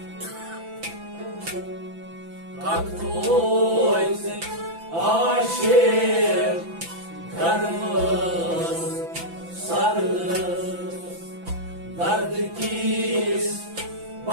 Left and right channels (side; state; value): left; late; 5.9 ms